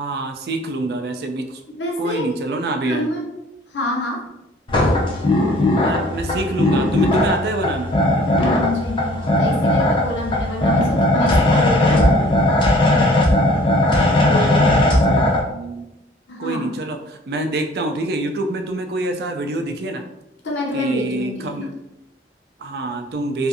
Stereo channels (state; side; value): normal; both; correlation 0.53